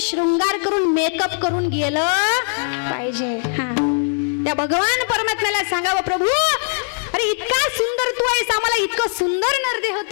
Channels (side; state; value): right; silent; digital silence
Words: शृंगार करून मेकअप करून गेलं पाहिजे. त्या भगवान परमात्म्याला सांगावं, प्रभू अरे इतका सुंदर तू आहेस, आम्हाला इतकं सुंदर नरदेह